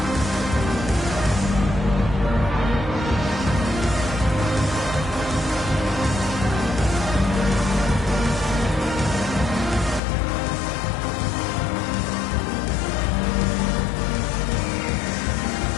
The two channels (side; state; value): right; drops out; at 10.0 s